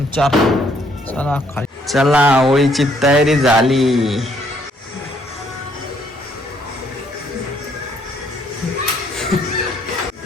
चला खाली. चला होळीची तयारी झाली.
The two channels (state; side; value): normal; both; correlation 0.67